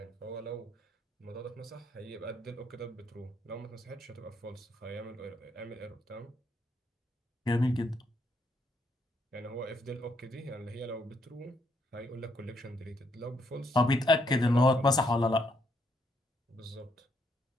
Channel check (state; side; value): normal; both; correlation 0.74